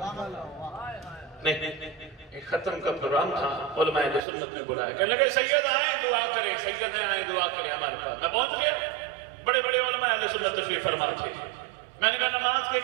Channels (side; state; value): left; drops out; at 4.2 s